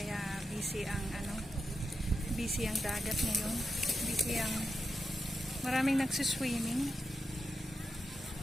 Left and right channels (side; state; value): both; normal; correlation 0.88